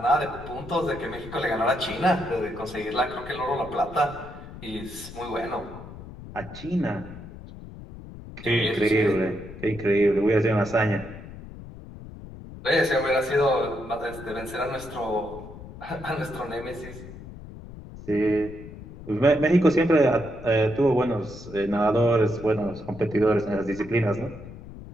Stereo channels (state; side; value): noise; left; rumble, 14 dB below the sound